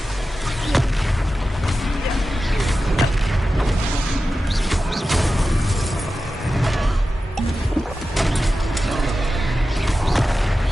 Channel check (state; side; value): normal; both; correlation 0.93